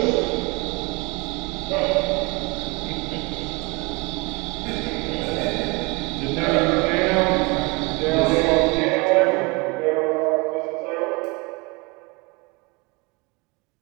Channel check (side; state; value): left; quieter; 27.7 dB